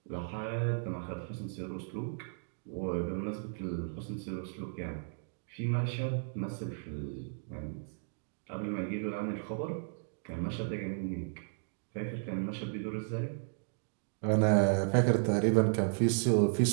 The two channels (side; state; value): left; silent; digital silence